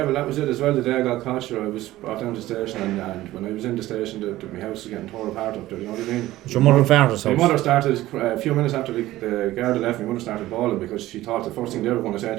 well, that was it as well. The day I got caught, sure, I was brought down to the station, and when I was in the station, my house was getting torn apart up there, you know what I mean? It's your mother and father's house? My mother started, a few minutes after the guard had left, my mother started bawling because she thought the first thing they were going to say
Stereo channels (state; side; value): quieter; left; 16.0 dB